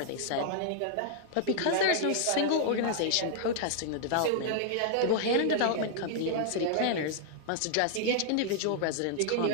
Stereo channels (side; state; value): both; different; correlation -0.01